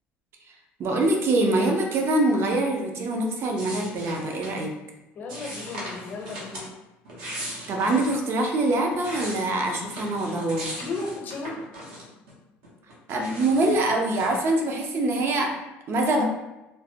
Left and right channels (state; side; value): normal; both; correlation 0.51